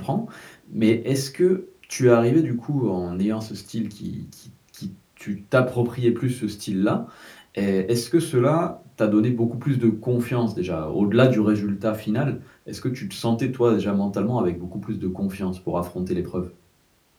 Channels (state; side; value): identical; both; correlation 1.00